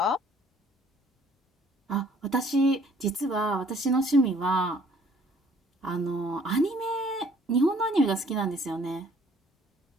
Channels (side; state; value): both; normal; correlation 0.58